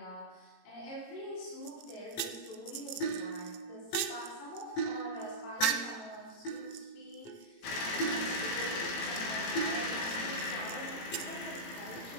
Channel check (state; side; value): late; right; 18 ms